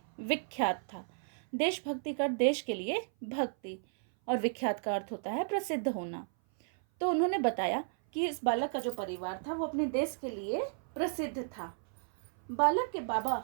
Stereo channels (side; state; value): left; silent; 55 dB below the other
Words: विख्यात था। देशभक्ति का देश के लिए भक्ति, और विख्यात का अर्थ होता है प्रसिद्ध होना। तो उन्होंने बताया कि इस बालक का जो परिवार था वो अपने देश के लिए प्रसिद्ध था। बालक के